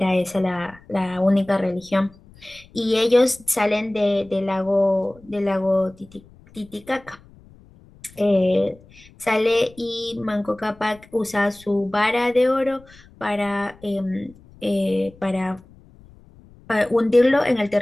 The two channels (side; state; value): left; noise; rumble, 25 dB below the sound